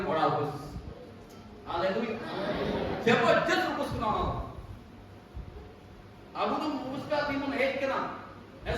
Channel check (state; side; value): identical; both; correlation 1.00